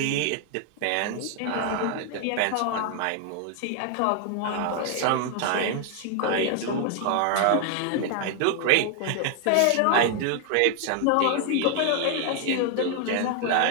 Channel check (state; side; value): different; both; correlation 0.00